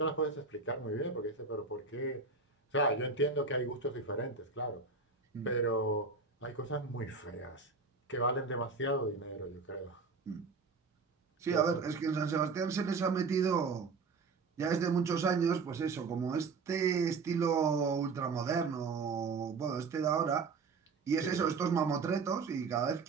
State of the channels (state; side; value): quieter; left; 4.5 dB